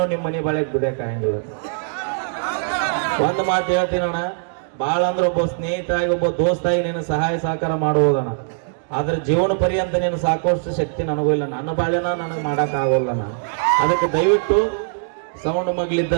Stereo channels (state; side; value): silent; left; digital silence